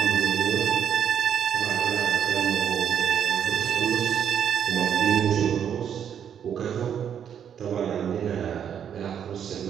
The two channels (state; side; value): quieter; left; 8.6 dB